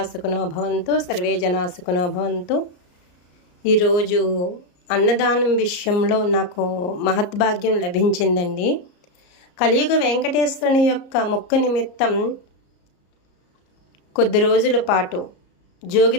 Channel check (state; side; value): late; right; 34 ms